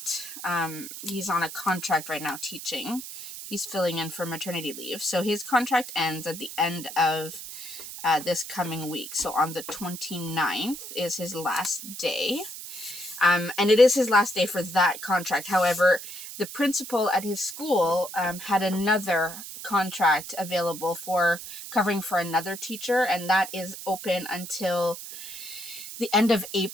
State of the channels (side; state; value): right; noise; hiss, 11 dB below the sound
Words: he's on a contract right now teaching. He's filling in for maternity leave. So his contract ends at the end of this coming week. So on the 29th is his last day. And it is his last day for that contract. However, the principal at his school had another contract available for covering for another teacher, and that is open until the end of